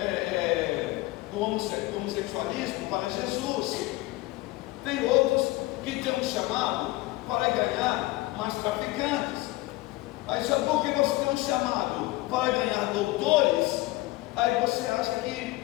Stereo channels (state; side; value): quieter; right; 19.7 dB